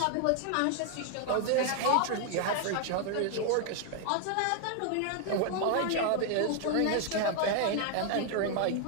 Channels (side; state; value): both; different; correlation 0.00